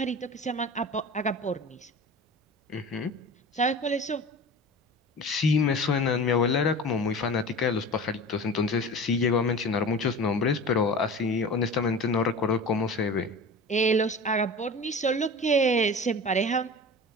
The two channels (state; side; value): normal; both; correlation 0.35